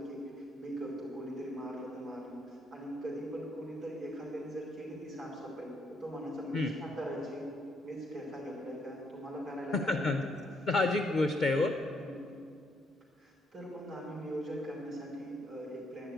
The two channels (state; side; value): normal; both; correlation 0.73